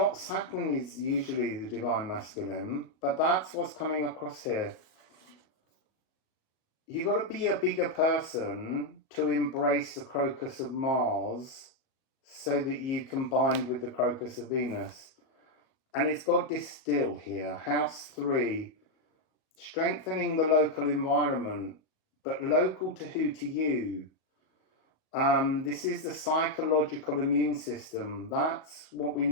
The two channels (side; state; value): right; late; 38 ms